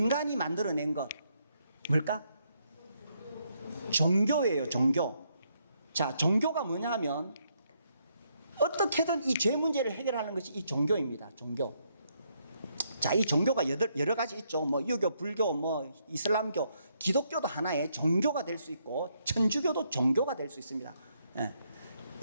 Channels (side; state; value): both; inverted; correlation -0.75